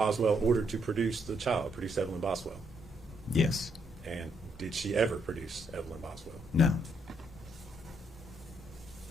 ordered to produce the child, produce Evelyn Boswell? Yes. And did she ever produce Evelyn Boswell? No.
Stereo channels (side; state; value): both; normal; correlation 0.74